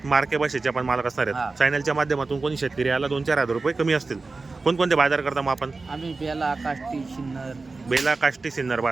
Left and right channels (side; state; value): left; quieter; 3.8 dB